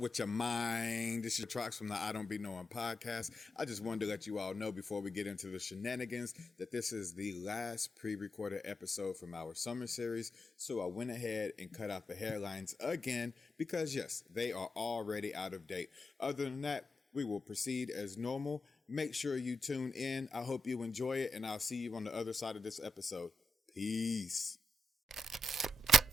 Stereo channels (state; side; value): normal; both; correlation 0.84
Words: with your mind? This is Trox from the I Don't Be Knowing podcast. I just wanted to let you all know before we get into the shenanigans that this is the last pre-recorded episode from our summer series. So I went ahead and cut out the hairlines again because yes, they are already out of date. Other than that, we will proceed as normal. Make sure you tune in. I hope you enjoy it, and I'll see you on the other side of this episode. Peace.